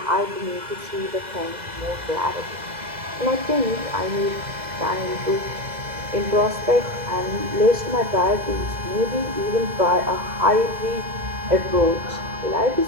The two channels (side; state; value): left; late; 2.0 ms